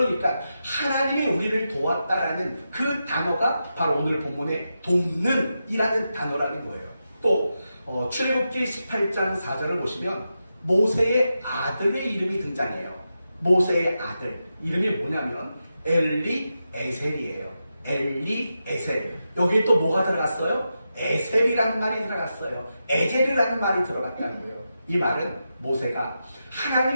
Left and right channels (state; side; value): inverted; both; correlation -0.89